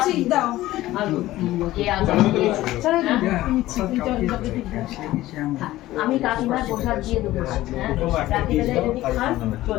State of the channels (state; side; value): quieter; right; 16.0 dB